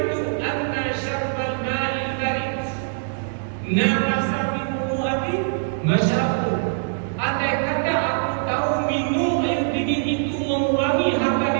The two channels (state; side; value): silent; left; digital silence